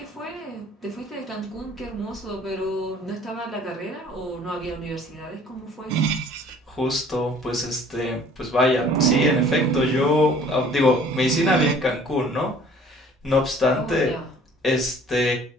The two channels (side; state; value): both; normal; correlation 0.53